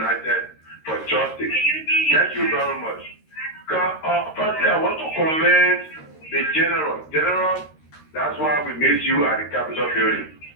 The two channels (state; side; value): late; right; 13 ms